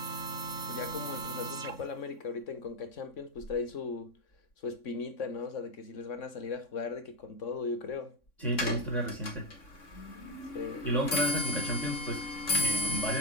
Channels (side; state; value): right; late; 3.6 ms